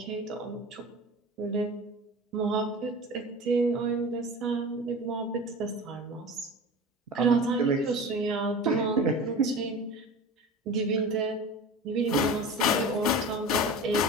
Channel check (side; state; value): both; normal; correlation 0.34